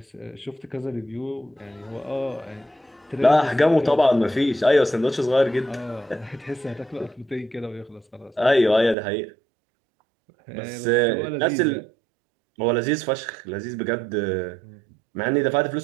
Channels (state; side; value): drops out; left; at 9.0 s